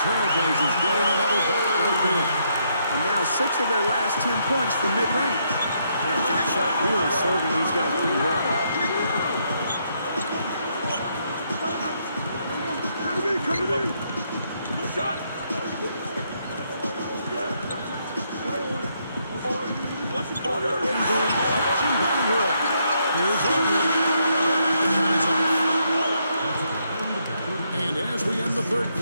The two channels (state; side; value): inverted; both; correlation -0.75